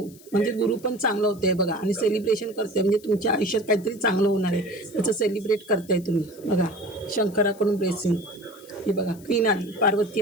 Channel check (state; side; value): noise; left; hiss, 23 dB below the sound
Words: म्हणजे गुरु पण चांगलं होतं आहे बघा. आणि सेलिब्रेशन करते, म्हणजे तुमच्या आयुष्यात काहीतरी चांगलं होणार आहे त्याचं सेलिब्रेट करताय तुम्ही बघा. शंकराकडून ब्लेसिंग. हे बघा क्वीन आली, पार्वती